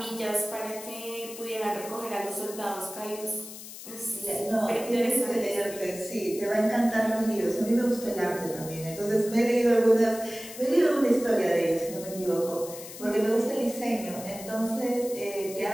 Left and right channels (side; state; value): left; noise; hiss, 13 dB below the sound